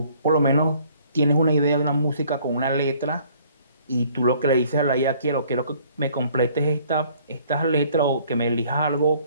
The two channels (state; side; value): inverted; both; correlation -0.58